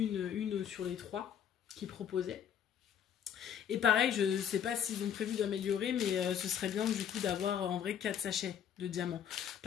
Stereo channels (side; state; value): right; quieter; 8.9 dB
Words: sur les 3 qu'ils proposaient. Et pareil, je sais pas s'ils ont prévu d'améliorer, mais ce serait bien du coup d'avoir en vrai 4 sachets de diamants.